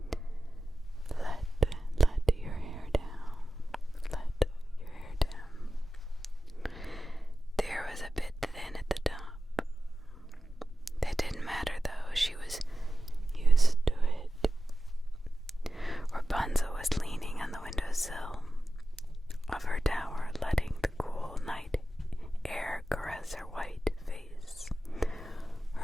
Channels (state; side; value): normal; both; correlation 0.94